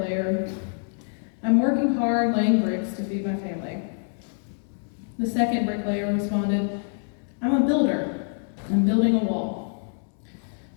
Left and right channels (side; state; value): right; silent; 61 dB below the other